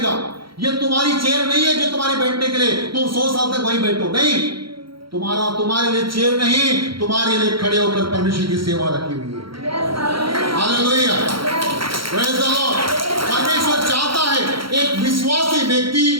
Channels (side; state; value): left; late; 0.74 ms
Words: ये तुम्हारी चेयर नहीं है जो तुम्हारे बैठने के लिए तुम 100 साल तक वहीं बैठो, नहीं। तुम्हारे लिए चेयर नहीं, तुम्हारे लिए खड़े होकर परमेश्वर की सेवा रखी हुई है। Hallelujah, praise the Lord. परमेश्वर चाहता है एक विश्वासी व्यक्ति